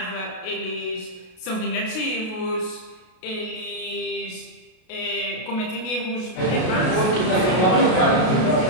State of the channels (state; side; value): late; right; 33 ms